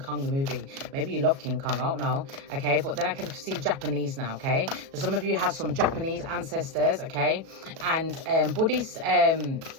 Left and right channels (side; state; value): left; late; 37 ms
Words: the movie, maybe you love King Kong, I don't know. Okay, but then I can see Japanese now. Okay, so some of you have some Japanese ancestors. Okay, and Buddhist.